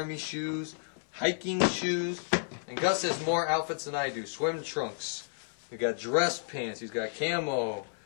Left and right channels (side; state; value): right; silent; 57 dB below the other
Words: shoes, hiking shoes. And Gus has more outfits than I do. Swim trunks. We've got dress pants. He's got camo.